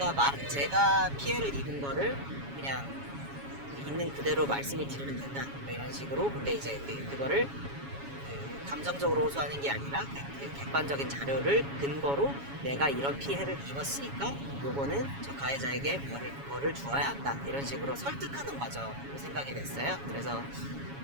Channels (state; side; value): late; left; 7.2 ms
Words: 피해를 입은 거를 그냥 있는 그대로 말씀을 드리면 된다 뭐 이런 식으로 근데 이제 그거를 감정적으로 호소하는 게 아니라 객관적인 자료를 근거로 내가 이런 피해를 입었으니까 요거는 저 가해자에게 뭐를 주어야 한다 이런 식으로 설득하는 과정으로 생각이 됐어요. 그래서